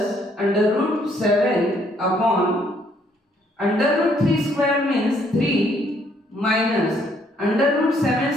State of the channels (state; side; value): normal; both; correlation 0.68